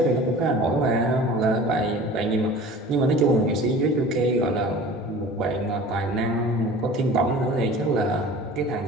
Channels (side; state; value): both; normal; correlation 0.41